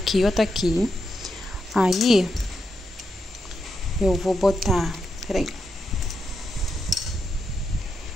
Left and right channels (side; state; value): both; normal; correlation 0.84